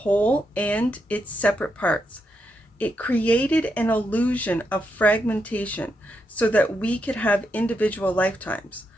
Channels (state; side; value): normal; both; correlation 0.82